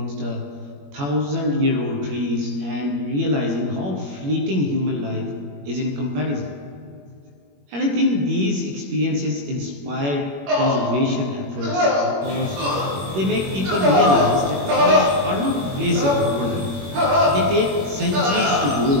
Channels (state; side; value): late; left; 21 ms